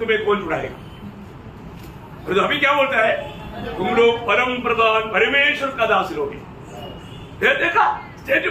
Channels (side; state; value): both; identical; correlation 1.00